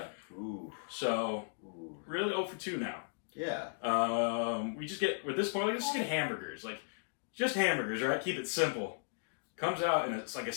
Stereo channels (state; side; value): silent; right; digital silence